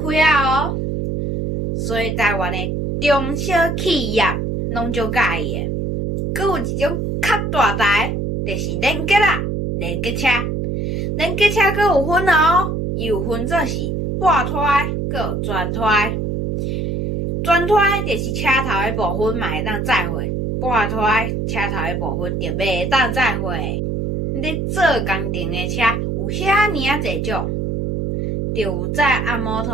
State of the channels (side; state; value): right; noise; hum, 1 dB below the sound